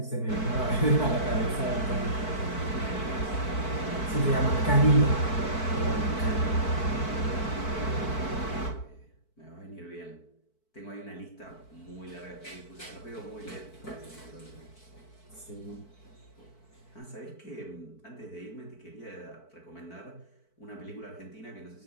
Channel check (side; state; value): right; late; 4.5 ms